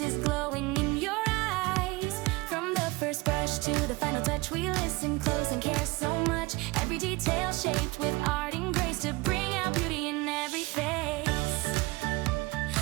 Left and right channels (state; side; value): quieter; left; 23.4 dB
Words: is glowing in your eyes. From the first brush to the final touch, we listen close and care so much. Every detail shaped with art and grace to bring out beauty in every face.